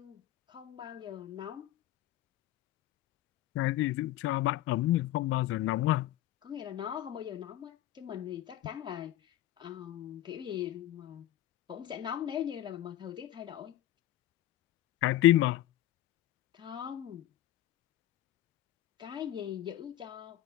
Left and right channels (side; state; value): right; quieter; 13.8 dB